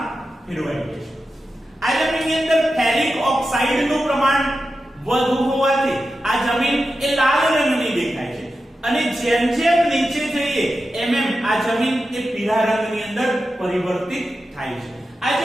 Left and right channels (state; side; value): normal; both; correlation 0.91